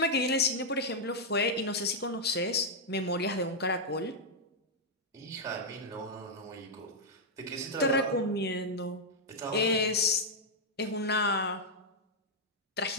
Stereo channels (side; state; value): both; normal; correlation -0.04